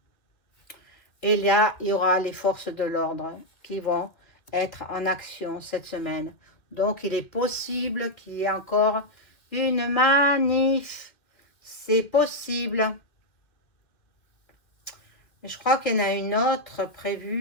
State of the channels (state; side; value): late; right; 2.4 ms